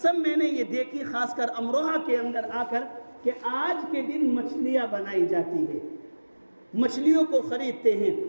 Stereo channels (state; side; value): inverted; both; correlation -1.00